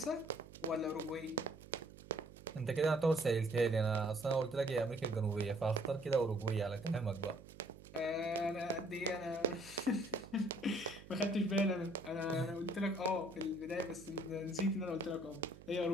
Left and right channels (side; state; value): right; noise; hum, 18 dB below the sound